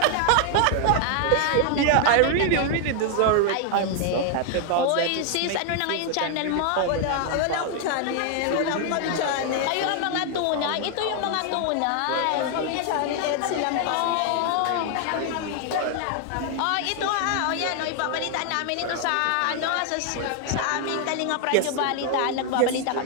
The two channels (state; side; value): different; both; correlation 0.00